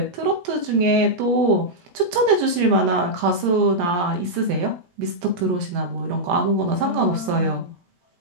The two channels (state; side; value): late; left; 17 ms